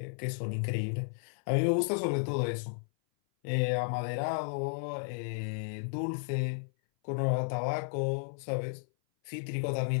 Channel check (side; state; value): right; silent; 56 dB below the other